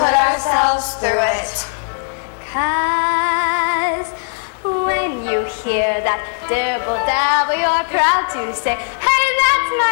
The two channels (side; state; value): right; silent; digital silence